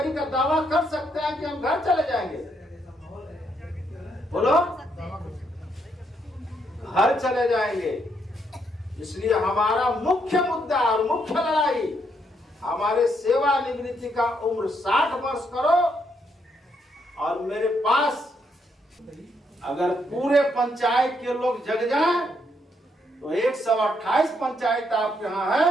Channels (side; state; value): both; normal; correlation 0.75